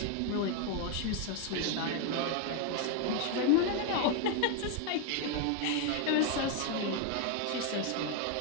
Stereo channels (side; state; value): both; different; correlation 0.00